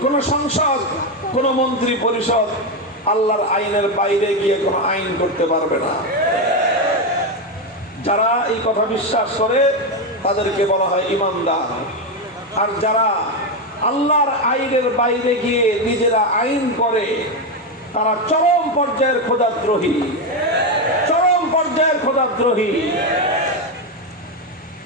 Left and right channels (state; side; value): normal; both; correlation 0.09